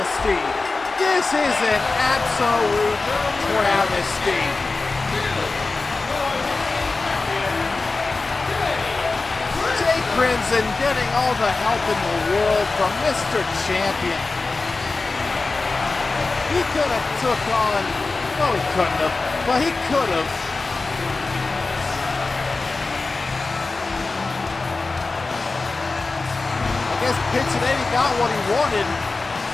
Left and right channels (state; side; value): quieter; right; 3.7 dB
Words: This is an absolute travesty. Jay Crimson getting all the help in the world from Mr. Champion. He could have took on, no he couldn't have, but he could have. I guess Pizzanelli got what he wanted.